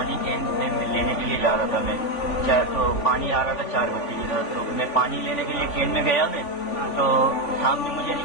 کین میں لینے کے لیے جا رہا تھا میں، تو پانی آ رہا تھا 4 بجے کی رات، تو میں پانی لینے کے لیے کین میں گیا میں، تو سامنے مجھے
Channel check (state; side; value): late; right; 3.5 ms